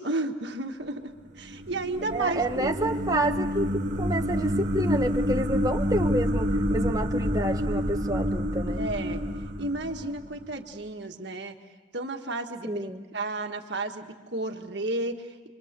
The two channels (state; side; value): normal; both; correlation 0.56